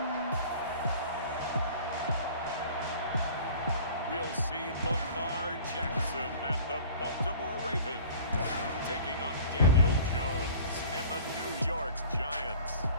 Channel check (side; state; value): both; inverted; correlation -0.45